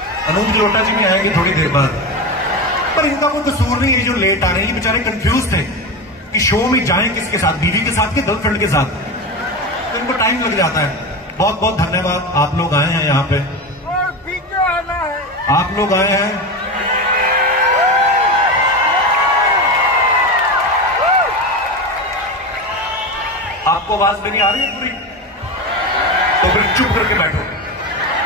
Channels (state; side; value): normal; both; correlation 0.21